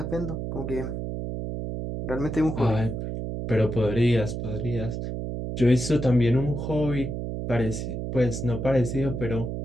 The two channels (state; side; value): noise; right; hum, 4 dB below the sound